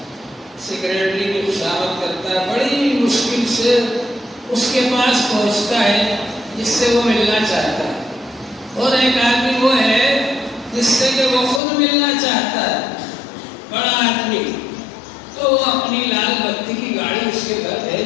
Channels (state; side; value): drops out; right; at 11.6 s